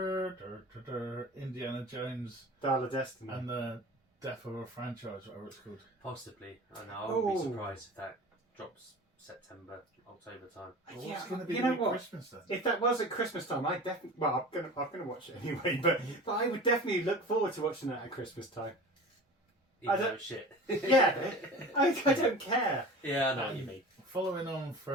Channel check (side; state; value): both; normal; correlation 0.37